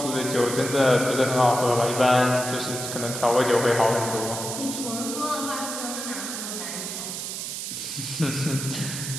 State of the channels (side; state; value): right; noise; hiss, 5 dB below the sound